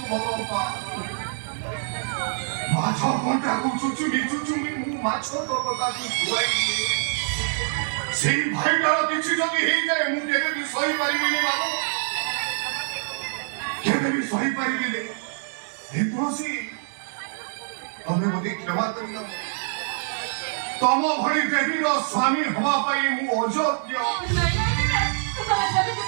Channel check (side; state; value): left; silent; digital silence